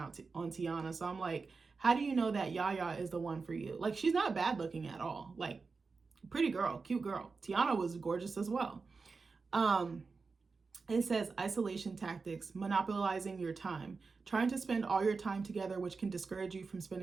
on Tiana. So I'm like, how do you know that Yaya is the one for you? Like, she's not bad looking at all. Like, pretty girl, cute girl. Tiana was gorgeous as well. It says isolation tactics, monopolizing your time, trying to spend all your time together, which can discourage you from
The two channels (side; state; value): left; quieter; 4.5 dB